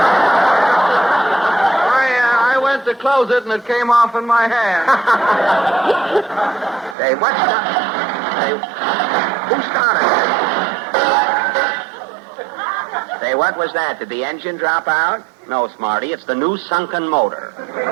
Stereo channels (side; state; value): left; drops out; at 7.0 s